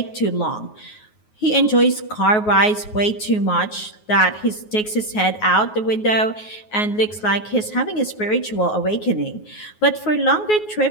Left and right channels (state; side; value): late; right; 9.4 ms